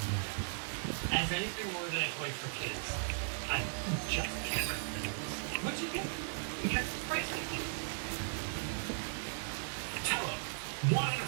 As anything more than a toy for kids, I just can't recommend this. What'd you get? Because it's pricey. Tello. Want an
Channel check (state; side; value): silent; left; digital silence